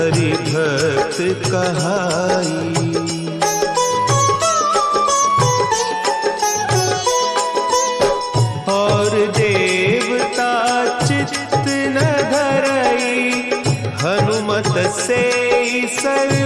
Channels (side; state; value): both; identical; correlation 1.00